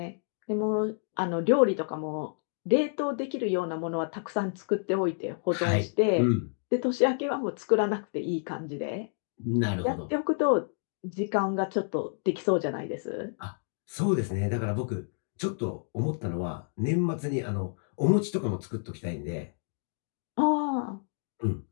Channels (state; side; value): silent; right; digital silence